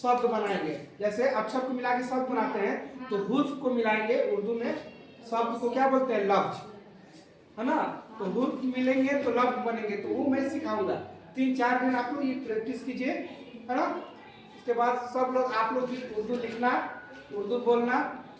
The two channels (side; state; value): both; identical; correlation 1.00